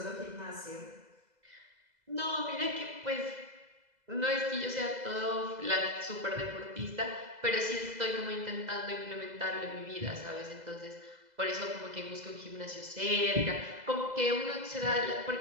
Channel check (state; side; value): late; left; 2.0 ms